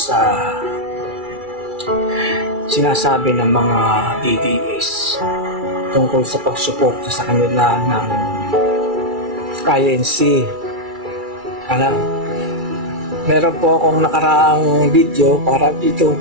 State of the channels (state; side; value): late; left; 2.3 ms